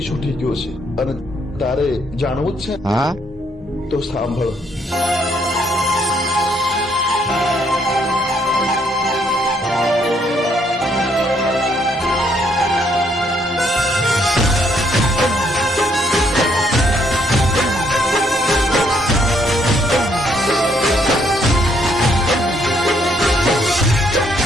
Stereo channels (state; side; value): normal; both; correlation 0.70